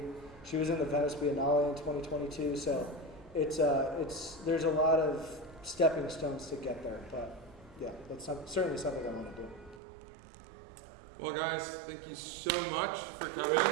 She was in the Venice Biennale in 2022. So there's a lot of stepping stones to get there. But yeah, that's certainly something I want to do. Well, guys, thank you so much for coming.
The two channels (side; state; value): left; drops out; at 9.8 s